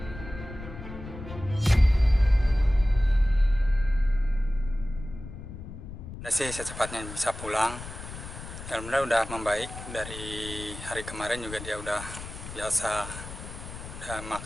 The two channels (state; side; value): noise; left; rumble, 11 dB below the sound